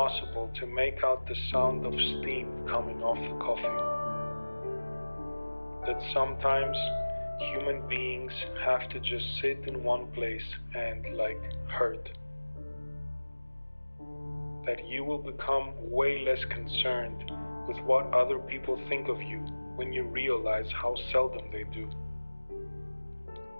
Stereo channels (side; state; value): both; inverted; correlation -1.00